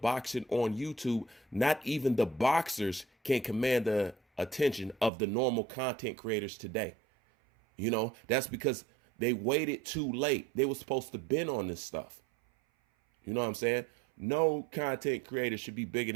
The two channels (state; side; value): drops out; left; at 5.1 s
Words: on YouTube, not even the boxers can command the attention of the normal content creators today. You know, that's because they waited too late. They were supposed to been on this stuff. You know what I'm saying? No content creator should be bigger